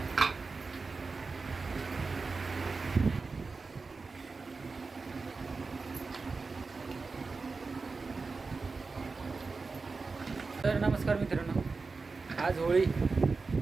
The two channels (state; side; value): quieter; left; 4.2 dB